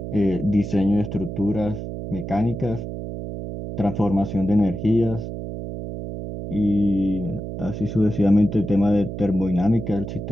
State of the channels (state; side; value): noise; right; hum, 7 dB below the sound